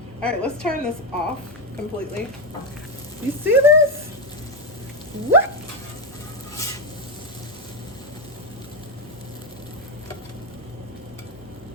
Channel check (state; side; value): normal; both; correlation 0.08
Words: All right, let's turn this off completely. You see this? What?